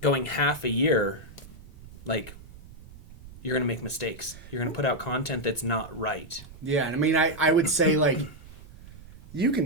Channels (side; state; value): right; noise; rumble, 18 dB below the sound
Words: going half a year, like, you're going to make mistakes. You're going to put out content that's not right. Yeah, and I mean, I would say, like, you